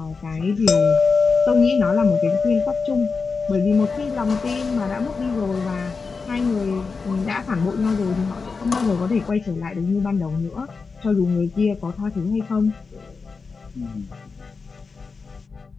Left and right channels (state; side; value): quieter; right; 4.7 dB